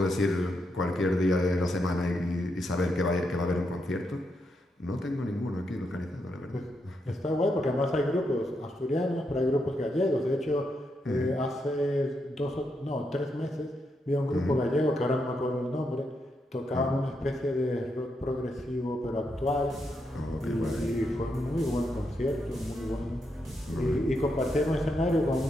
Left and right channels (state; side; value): normal; both; correlation 0.82